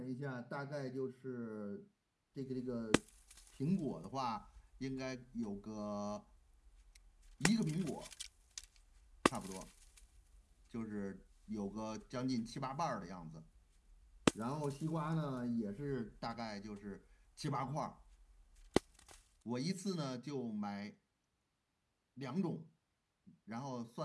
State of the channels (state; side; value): identical; both; correlation 1.00